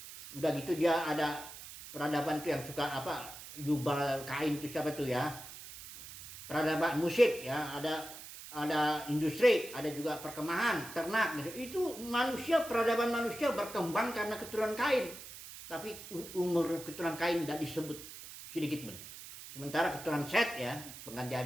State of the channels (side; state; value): right; noise; hiss, 13 dB below the sound